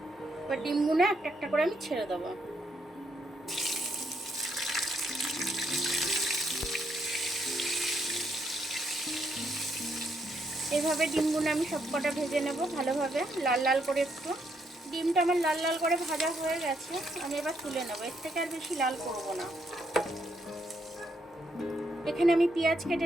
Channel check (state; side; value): normal; both; correlation 0.76